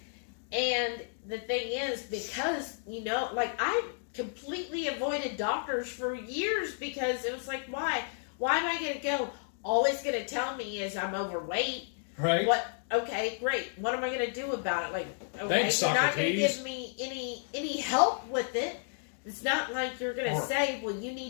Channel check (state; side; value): silent; right; digital silence